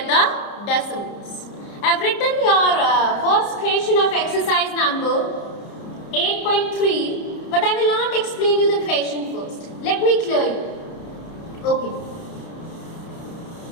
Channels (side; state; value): right; late; 30 ms